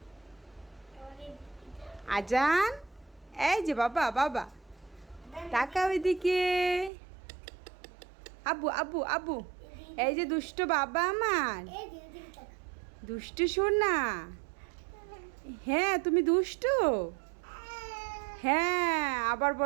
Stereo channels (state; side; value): drops out; left; at 6.9 s